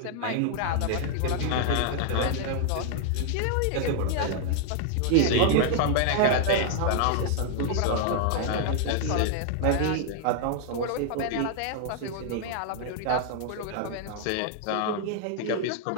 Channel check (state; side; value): different; both; correlation 0.00